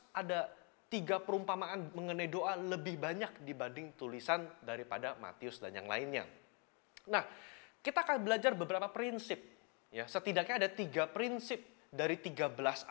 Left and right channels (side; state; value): right; quieter; 35.1 dB